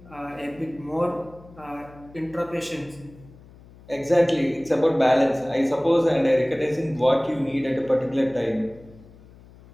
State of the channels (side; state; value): left; noise; hum, 23 dB below the sound